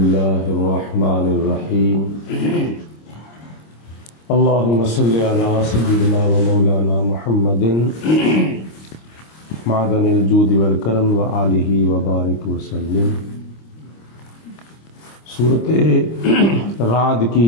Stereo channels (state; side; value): late; right; 26 ms